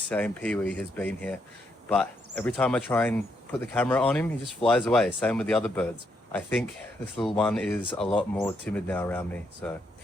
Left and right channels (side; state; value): both; normal; correlation 0.77